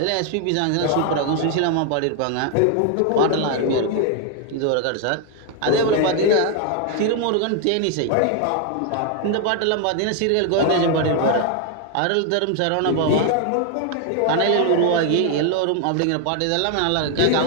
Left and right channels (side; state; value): both; different; correlation 0.00